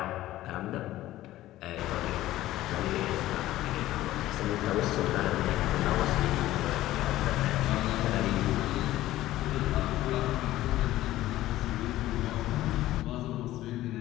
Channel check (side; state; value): right; quieter; 15.2 dB